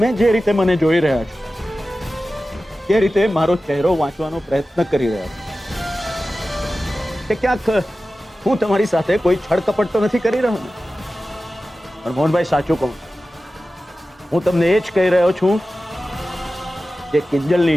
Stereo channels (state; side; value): normal; both; correlation 0.95